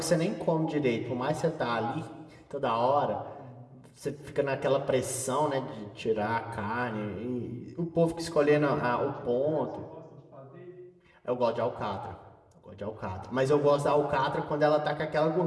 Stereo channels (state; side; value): identical; both; correlation 1.00